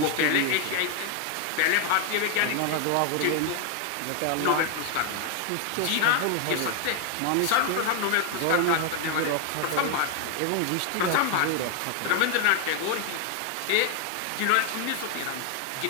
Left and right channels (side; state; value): both; different; correlation 0.01